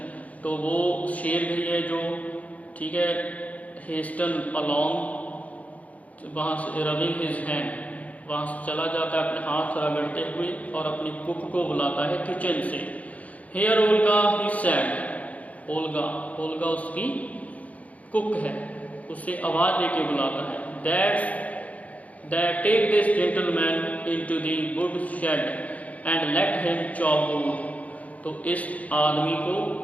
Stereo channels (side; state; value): right; late; 0.069 ms